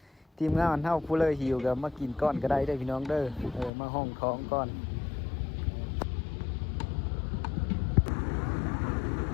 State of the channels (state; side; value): drops out; right; at 3.7 s